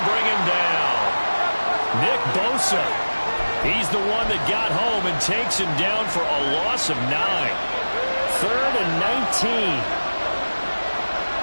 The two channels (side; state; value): both; inverted; correlation -1.00